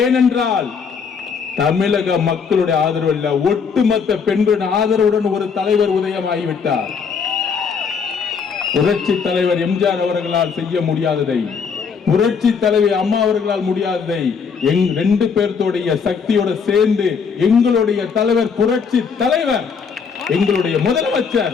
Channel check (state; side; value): quieter; right; 6.0 dB